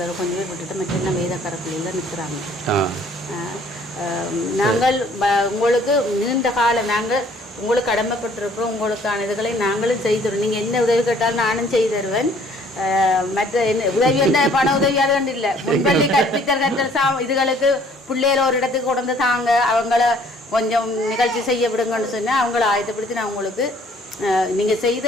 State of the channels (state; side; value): normal; both; correlation 0.58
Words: கொஞ்சம் பேர் விட்டுட்டு மற்ற என்ன வேதக்கார பிள்ளைகள் நிற்கிறாங்க. நாங்கள் உங்களுக்கு நீண்ட காலம் நாங்கள் உங்களுக்கு கடமைப்பட்டிருக்கிறோம். உங்களுக்கான இதுகளை நாங்களும் செய்துருவோம். நீங்கள் என்ன உதவி கேட்டாலும் நானும் செய்து தருவேன். மற்ற என்ன உதவி வந்து பண உதவியாக வேண்டிய இல்லை. முன்பள்ளி கற்பித்தல் இதுகளுக்கு பிள்ளைகள் ஒரு இடத்துக்கு கொண்டு தாங்க, அவங்கள கொஞ்சம் நிகழ்ச்சி செய்ய விடுங்கன்னு சொன்னால் அவங்கள ஆயத்தப்படுத்தி நான் உங்களுக்கு நீங்கள் செய்த